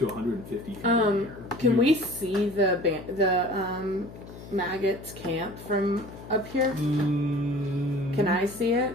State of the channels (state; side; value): noise; left; hum, 15 dB below the sound